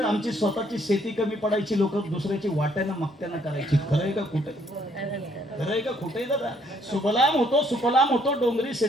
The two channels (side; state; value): both; normal; correlation 0.67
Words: आमची स्वतःची शेती कमी पडायची, लोक दुसऱ्याची वाट्यानं मागत्यानं करायची. खरंय का खोटं? खरंय का खोटंय दादा? सुफलाम होतो डोंगरी